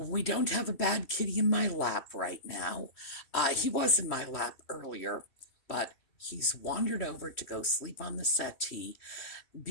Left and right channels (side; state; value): right; late; 3.1 ms